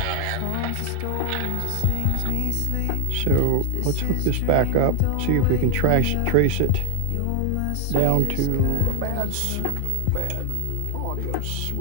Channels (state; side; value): different; both; correlation 0.00